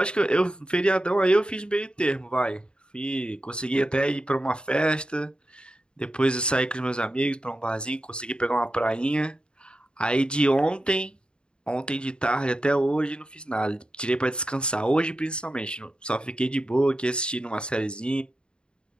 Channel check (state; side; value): late; right; 0.052 ms